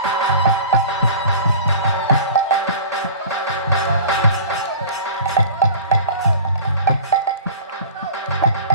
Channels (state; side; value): inverted; both; correlation -0.40